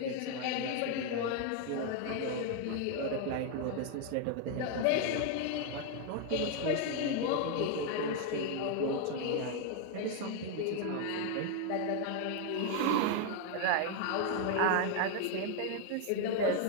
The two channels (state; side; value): different; both; correlation 0.01